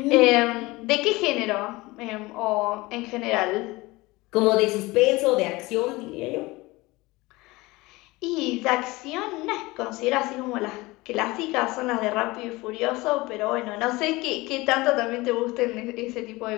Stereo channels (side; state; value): right; quieter; 21.6 dB